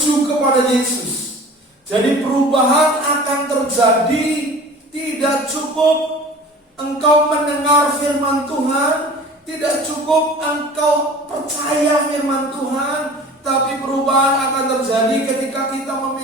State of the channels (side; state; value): both; normal; correlation 0.42